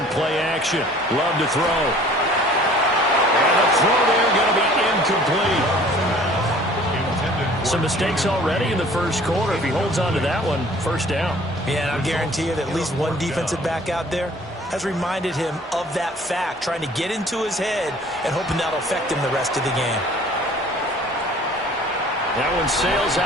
play action. Love to throw. And the throw there going to be incomplete. Some mistakes already in the first quarter. If he holds on to that one, first down. Yeah, and I guarantee you that at least one defensive back out there has reminded him of that fact, trying to get into his head and hoping that'll affect him the rest of the game. That one sails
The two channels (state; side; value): normal; both; correlation 0.51